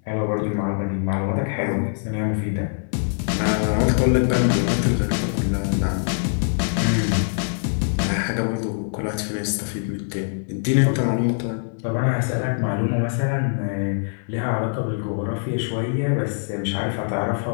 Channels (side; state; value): right; silent; 63 dB below the other